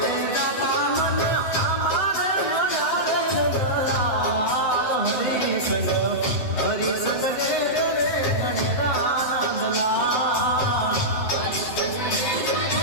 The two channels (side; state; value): right; late; 8.0 ms